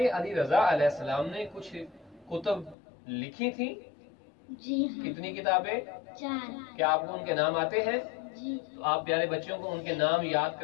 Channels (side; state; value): right; drops out; at 2.8 s